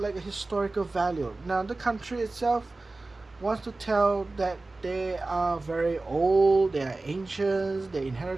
like a historical value. Now the country itself wants to tell that they are very old, they are ancient, they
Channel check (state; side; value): quieter; left; 3.2 dB